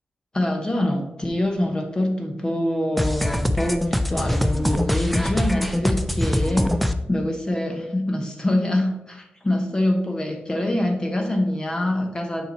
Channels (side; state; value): both; normal; correlation 0.96